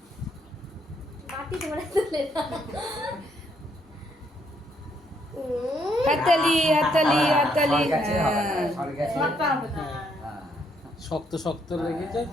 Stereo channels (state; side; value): normal; both; correlation 0.72